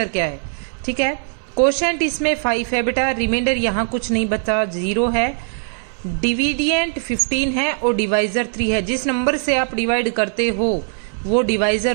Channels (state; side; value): silent; left; 66 dB below the other